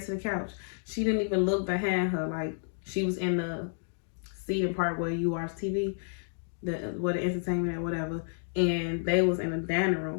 to the couch. She didn't even look behind her. Like, she was in the seating part where you watch TV, where the entertainment or whatever, and they was in the dining room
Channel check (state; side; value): silent; right; digital silence